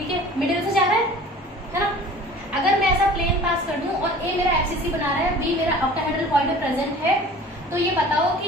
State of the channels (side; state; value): both; normal; correlation 0.44